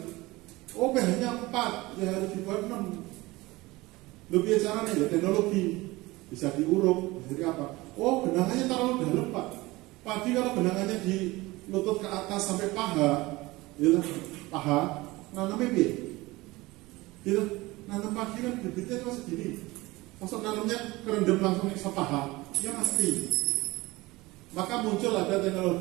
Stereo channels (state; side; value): quieter; left; 20.7 dB